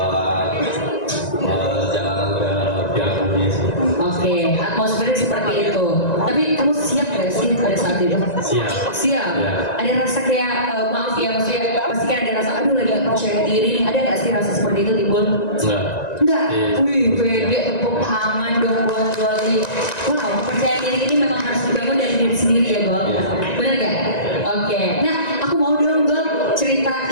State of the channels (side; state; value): right; late; 1.9 ms